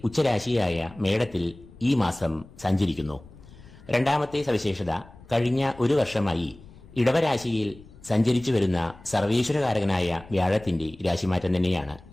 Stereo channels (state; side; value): noise; left; rumble, 21 dB below the sound